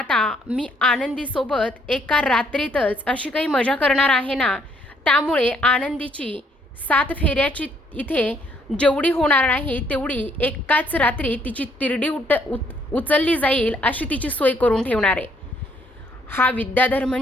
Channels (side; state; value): both; normal; correlation 0.68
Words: मी आनंदीसोबत एका रात्रीतच अशी काही मजा करणार आहे ना, त्यामुळे आनंदीची 7 फेऱ्याची इथे जेवढी होणार नाही तेवढी एकाच रात्री तिची तिरडी उचलली जाईल अशी तिची सोय करून ठेवणार आहे. हा विद्याधर